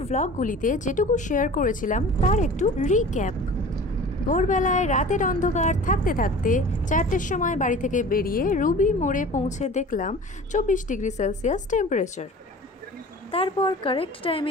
ভ্লগগুলিতে যেটুকু শেয়ার করেছিলাম তার একটু রিক্যাপ। ভোরবেলায় রাতের অন্ধকার থাকতে থাকতে 4টের সময় বাড়ি থেকে বেরিয়ে রুবি মোড়ে পৌঁছে দেখলাম 24 ডিগ্রি সেলসিয়াস টেম্পারেচার। তারপর কারেক্ট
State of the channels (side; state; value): both; normal; correlation 0.41